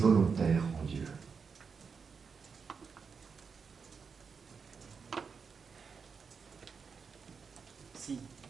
en Dieu? Si.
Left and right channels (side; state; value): left; quieter; 5.7 dB